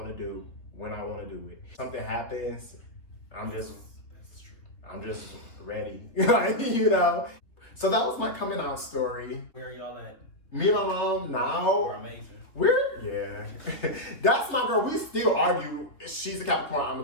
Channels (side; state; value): right; late; 3.5 ms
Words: to do when I want to do it. Something happens, I'm just ready, like, So that was my coming out story. Where are y'all at? Me and my mom now. We're amazing. Yeah. That's my girl. We still argue. She's a Capricorn, I'm